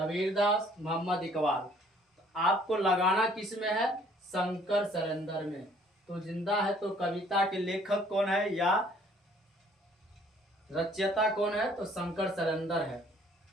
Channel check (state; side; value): normal; both; correlation 0.59